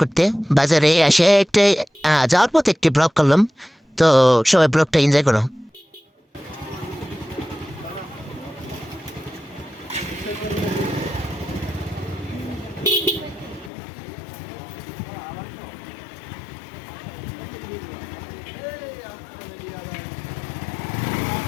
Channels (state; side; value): drops out; right; at 13.7 s